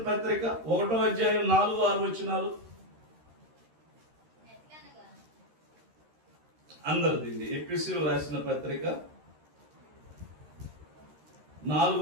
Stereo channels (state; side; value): late; left; 13 ms